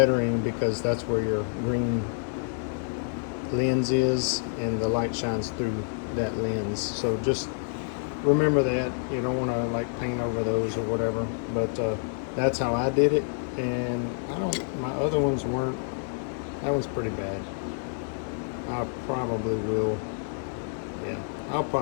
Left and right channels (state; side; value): silent; right; 59 dB below the other